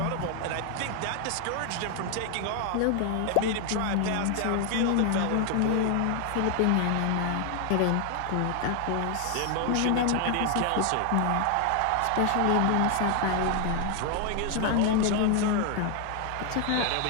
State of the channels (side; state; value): both; different; correlation 0.00